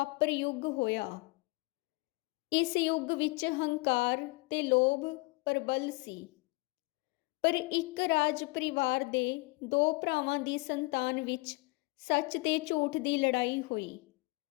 ਯੁੱਗ ਹੋਇਆ। ਇਸ ਯੁੱਗ ਵਿੱਚ ਹੰਕਾਰ ਤੇ ਲੋਭ ਪ੍ਰਬਲ ਸੀ, ਪਰ ਇੱਕ ਰਾਜ ਪਰਿਵਾਰ ਦੇ 2 ਭਰਾਵਾਂ ਦੀ ਸੰਤਾਨ ਵਿੱਚ ਸੱਚ ਤੇ ਝੂਠ ਦੀ ਲੜਾਈ ਹੋਈ।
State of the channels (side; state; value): right; quieter; 25.6 dB